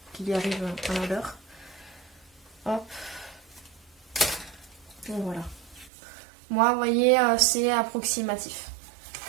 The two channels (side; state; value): left; drops out; at 5.9 s